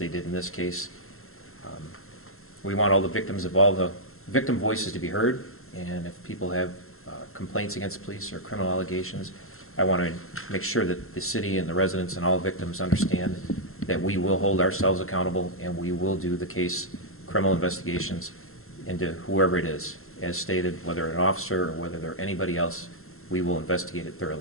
did in this case. We want all the victims of all the victim voices to be heard, and if people have complaints against police or criminal allegations, I want to make sure that the city and the residents and all victims understand that we will hold ourselves accountable and we will do the case criminal investigations into whoever it is. As stated, whether an officer or whether they're anybody else, we will investigate it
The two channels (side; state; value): right; late; 0.62 ms